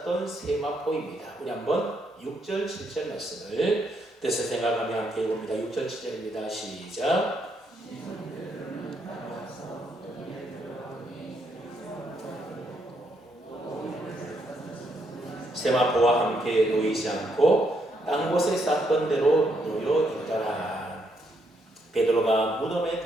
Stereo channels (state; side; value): normal; both; correlation 0.75